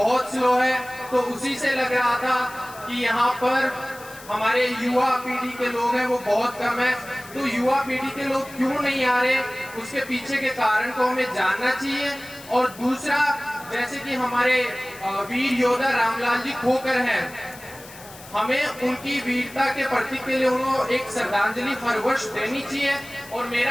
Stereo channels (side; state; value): left; noise; hiss, 18 dB below the sound